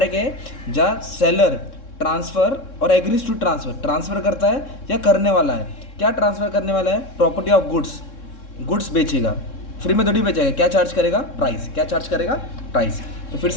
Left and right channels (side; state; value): right; late; 3.7 ms